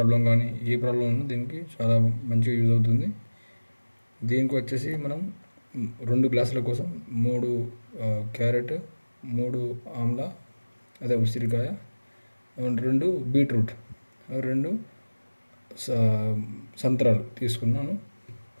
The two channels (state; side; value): inverted; both; correlation -1.00